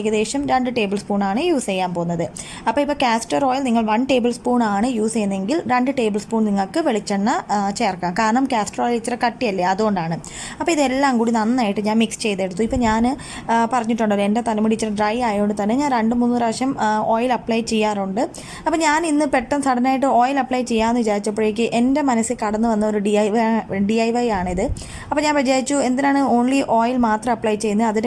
2 ടേബിൾ സ്പൂണാണ് യൂസ് ചെയ്യാൻ പോകുന്നത്. അപ്പോൾ ഇപ്പോൾ കാസ്റ്റർ ഓയിൽ നിങ്ങൾ 1 ടേബിൾ സ്പൂണാണ് യൂസ് ചെയ്യുന്നതെങ്കിൽ 2 ടേബിൾ സ്പൂൺ നിങ്ങൾക്ക് വെളിച്ചെണ്ണ ചേർക്കാം. കാരണം കാസ്റ്റർ ഓയിൽ ഇച്ചിരി കട്ടിയല്ലേ, അതുകൊണ്ടാണ്. അപ്പോൾ ഇതെല്ലാം കൂടി നന്നായിട്ട് ഞാൻ മിക്സ് ചെയ്തെടുത്തു. ഇപ്പോൾ ഞാൻ പറഞ്ഞിട്ടുണ്ടല്ലോ, എൻ്റെ തലമുടി ഇച്ചിരി ഡ്രൈ ആയതുകൊണ്ട് തന്നെ ഞാൻ 2-3 പ്രാവശ്യം ഓയിൽ അപ്ലൈ ചെയ്യാറുണ്ട്. അപ്പോൾ ഞാൻ ഇന്ന് പെട്ടെന്ന് സഡനായിട്ട് ഓയിൽ അപ്ലൈ ചെയ്യാമെന്ന് വിചാരിച്ചപ്പോഴേക്ക് എൻ്റെ മനസ്സിൽ കടന്നു വന്ന ഒരു DIY ആണിത്. അപ്പോൾ ഞാൻ വിചാരിച്ചു, എന്തിനാണ് ഓൺലി ഓയിൽ മാത്രം അപ്ലൈ ചെയ്യുന്നത്,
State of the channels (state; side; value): identical; both; correlation 1.00